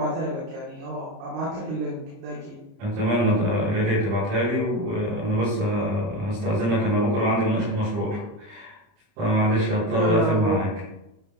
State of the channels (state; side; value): late; left; 30 ms